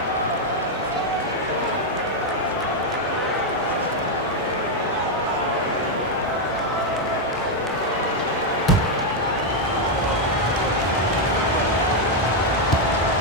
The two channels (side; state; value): both; normal; correlation 0.01